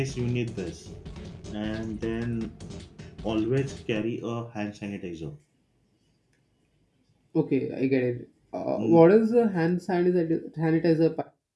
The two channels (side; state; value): both; identical; correlation 1.00